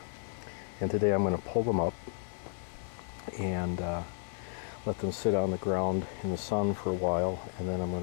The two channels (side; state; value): right; silent; 56 dB below the other